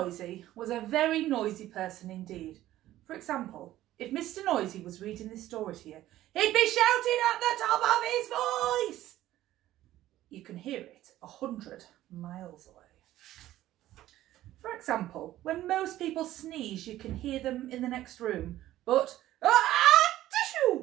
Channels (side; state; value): left; quieter; 14.3 dB